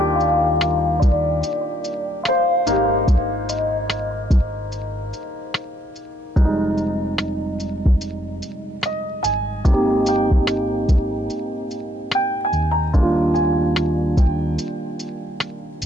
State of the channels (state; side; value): normal; both; correlation 0.72